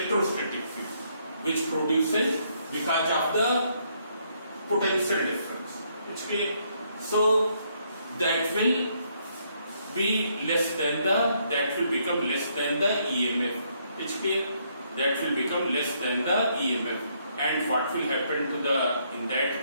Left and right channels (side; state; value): both; inverted; correlation -0.72